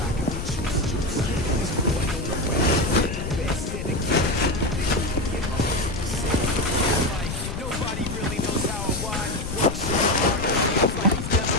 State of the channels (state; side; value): noise; left; rumble, 6 dB below the sound